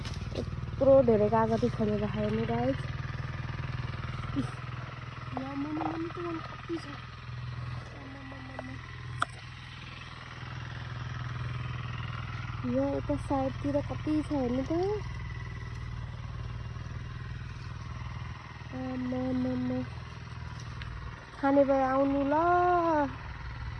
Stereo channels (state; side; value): identical; both; correlation 1.00